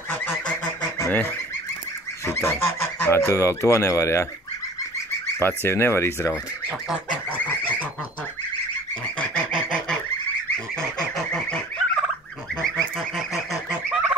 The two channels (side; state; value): both; normal; correlation 0.47